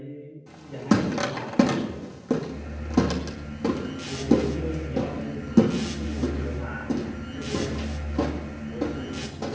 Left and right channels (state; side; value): identical; both; correlation 1.00